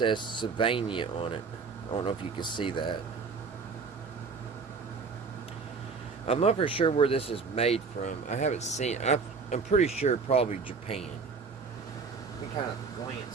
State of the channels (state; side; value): quieter; left; 4.9 dB